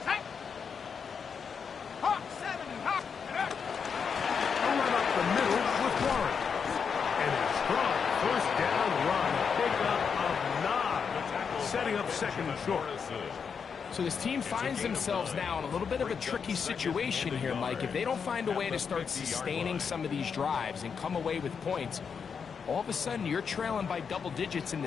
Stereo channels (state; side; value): quieter; right; 6.3 dB